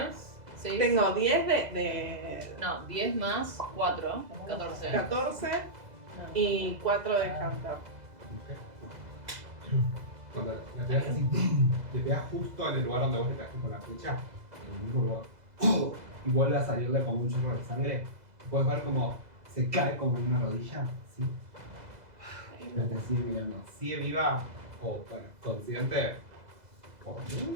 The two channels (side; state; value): left; late; 2.0 ms